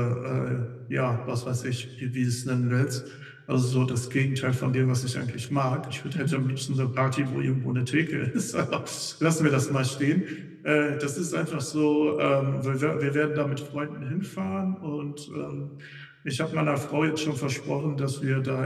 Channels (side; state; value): both; identical; correlation 1.00